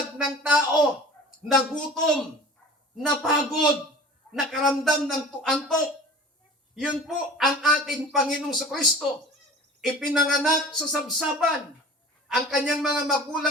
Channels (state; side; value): normal; both; correlation 0.42